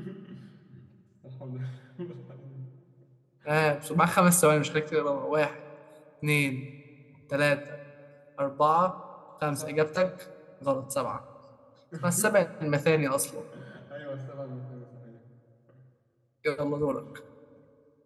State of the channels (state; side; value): identical; both; correlation 1.00